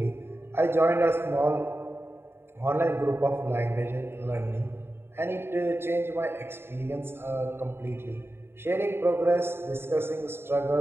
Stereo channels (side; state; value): left; late; 0.11 ms